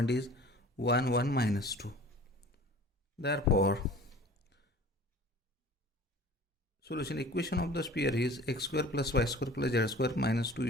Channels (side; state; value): both; normal; correlation 0.45